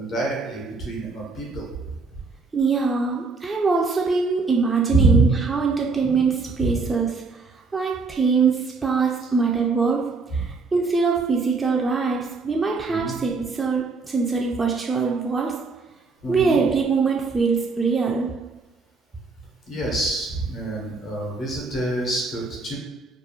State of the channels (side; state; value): left; quieter; 4.1 dB